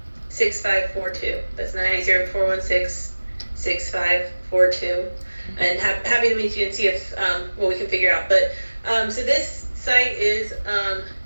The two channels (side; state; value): both; inverted; correlation -1.00